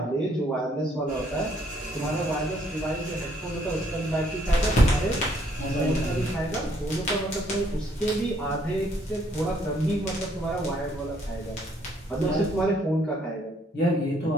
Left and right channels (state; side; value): normal; both; correlation 0.67